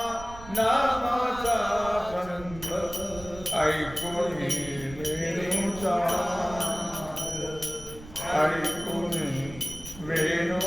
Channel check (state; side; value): noise; right; rumble, 15 dB below the sound